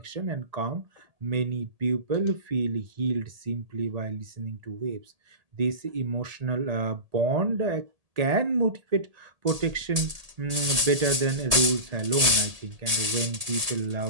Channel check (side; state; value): left; late; 1.8 ms